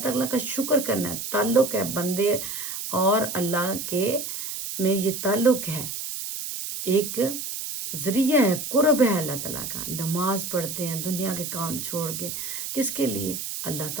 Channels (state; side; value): noise; right; hiss, 6 dB below the sound